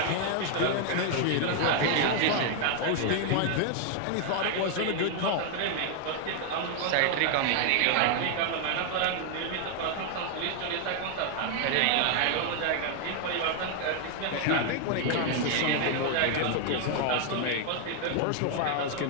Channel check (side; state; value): both; different; correlation 0.00